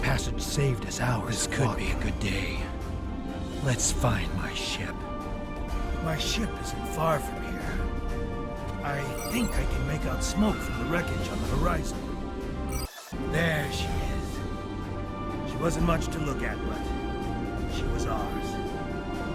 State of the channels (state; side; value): identical; both; correlation 1.00